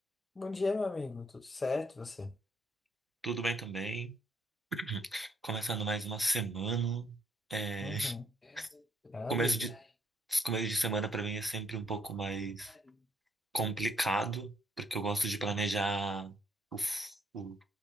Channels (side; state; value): both; normal; correlation 0.70